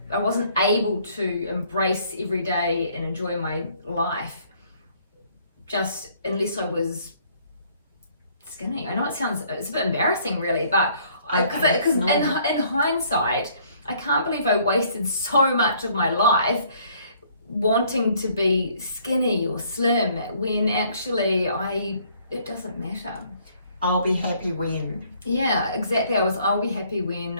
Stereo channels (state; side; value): inverted; both; correlation -0.62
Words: wasn't able to embrace every day and enjoy my life just unless I was skinny. I know it's a bit embarrassing really, but because in hindsight, I can't believe I wasted so much of my life wanting to be skinny or slim when actually it doesn't matter. I'll be happy when. Yeah, exactly. I'll be happy